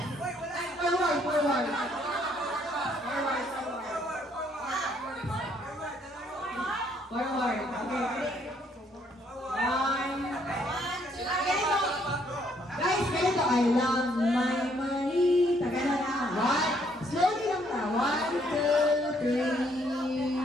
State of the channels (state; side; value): normal; both; correlation 0.68